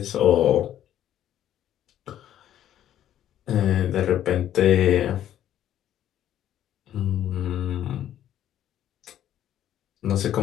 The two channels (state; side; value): quieter; right; 11.4 dB